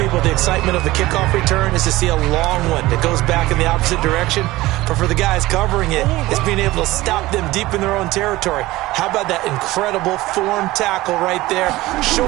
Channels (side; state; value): left; quieter; 18.4 dB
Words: the excitement of the kickoff return is to see a long one that goes back in the opposite direction. But for the guys covering it, it's being able to stop them deep in their own territory. How about that incredible form tackle right there?